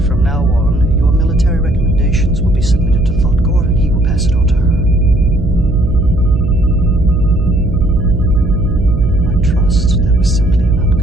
now on, your military recommendations will be submitted to Thoughtgore, and he will pass it on to her. I trust that was simply an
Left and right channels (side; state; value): right; noise; hum, 3 dB below the sound